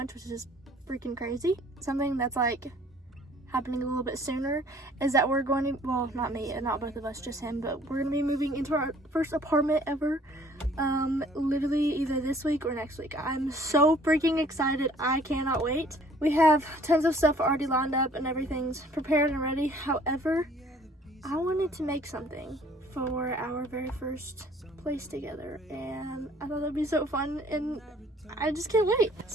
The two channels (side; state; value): both; normal; correlation 0.56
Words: which is freaking crazy. Something that's like happening a little bit sooner is that we're going to, well, not me and not both of us, just him, but we're going to be moving into our first apartment ever, literally either this week or next week. I'm so freaking excited. I cannot wait. We have tons of stuff already lined up and everything's prepared and ready. However, I wanted to make something for our very first place together and I thought that'd be so fun and I just can't wait.